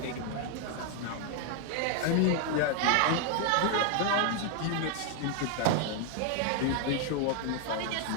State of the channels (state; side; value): different; both; correlation 0.00